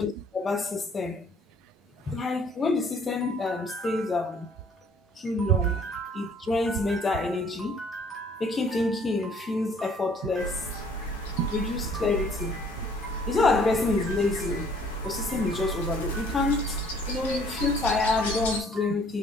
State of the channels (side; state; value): both; normal; correlation 0.59